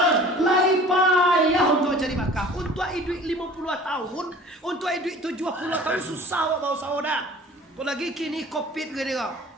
Lai payah untuk cari makan. Untuk hidup 50 tahun, untuk hidup 70 tahun susah bawa saudara. Apalagi kini COVID gini kok.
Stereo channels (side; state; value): both; normal; correlation 0.46